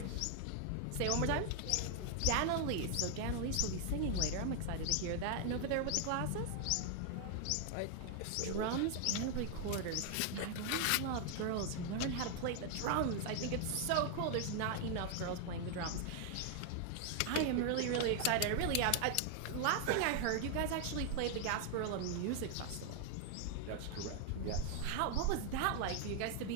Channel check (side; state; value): both; different; correlation 0.00